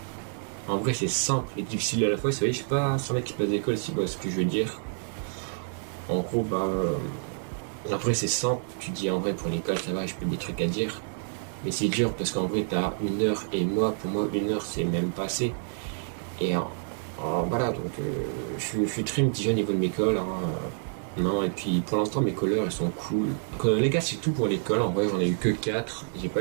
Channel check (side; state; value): left; silent; digital silence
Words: En vrai, c'est simple et difficile à la fois. Vous savez, je sais pas si on a qui passe d'école si ce que je veux dire. En gros, après, c'est simple. Tu dis en vrai, pour l'école, ça va, je peux des trucs à dire. Mais c'est dur parce qu'en vrai, t'as 1 heure et pour moi, 1 heure, c'est même pas assez. Et voilà, donc je suis très mitigé au niveau de mes cols. Hein. Non, et puis pour l'instant, mes colleurs, ils sont cool. Donc, les gars, c'est tout pour l'école. En vrai, j'en ai eu que 4. J'ai